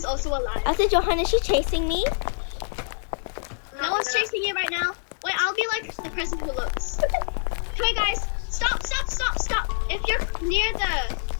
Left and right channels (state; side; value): silent; right; digital silence